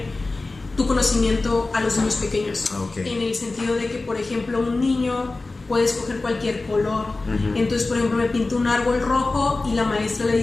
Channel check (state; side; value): quieter; right; 3.4 dB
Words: tu conocimiento a los niños pequeños, en el sentido de que, por ejemplo, un niño puede escoger cualquier color. Entonces, por ejemplo, me pinto un árbol rojo y la maestra le